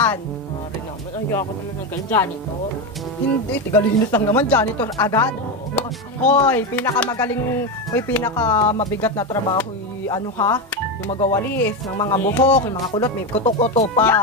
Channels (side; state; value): both; normal; correlation 0.13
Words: Mare naman, ayoko naman ng ganun. Janitor. Hindi, tigalinis lang naman, janitor agad. Hoy, pinakamagaling, hoy, pinakamabigat na trabaho, ano ha? Yung magawalis, ng mga buhok, yung mga kulot, may kuto-kuto